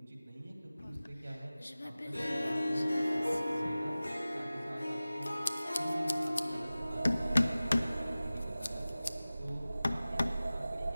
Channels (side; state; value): both; inverted; correlation -0.97